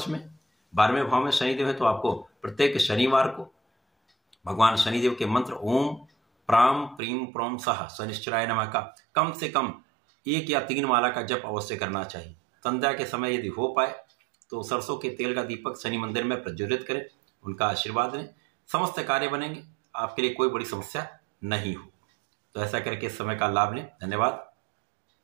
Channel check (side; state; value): left; drops out; at 7.0 s